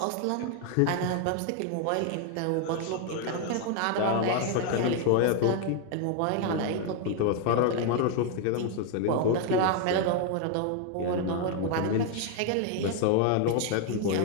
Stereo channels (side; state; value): both; different; correlation 0.00